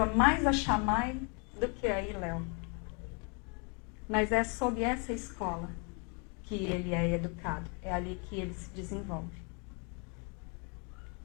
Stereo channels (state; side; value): quieter; right; 35.6 dB